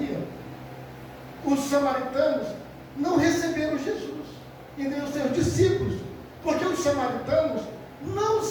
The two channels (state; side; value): identical; both; correlation 1.00